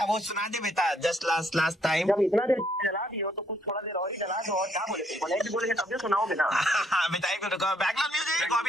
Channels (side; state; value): both; normal; correlation 0.69